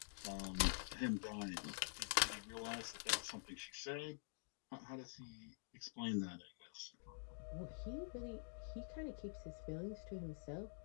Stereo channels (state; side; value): silent; right; digital silence